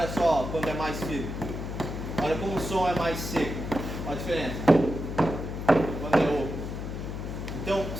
só quando é mais firme. Olha como o som é mais seco. Olha a diferença. Quando é oco. Então,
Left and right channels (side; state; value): left; noise; hum, 6 dB below the sound